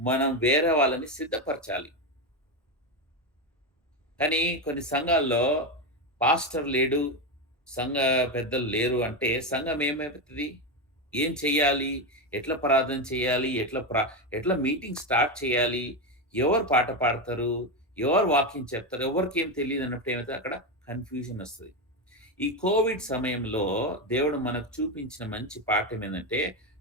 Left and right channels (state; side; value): normal; both; correlation 0.12